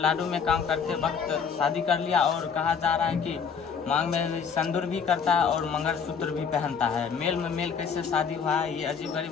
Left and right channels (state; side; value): quieter; right; 6.3 dB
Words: में काम करते वक्त शादी कर लिया और कहा जा रहा है कि मांग में सिंदूर भी करता है और मंगलसूत्र भी पहनता है। मेल में मेल कैसे शादी हुआ है, ये अजीब